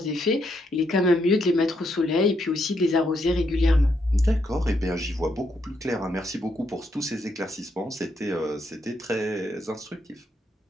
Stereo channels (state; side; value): normal; both; correlation 0.77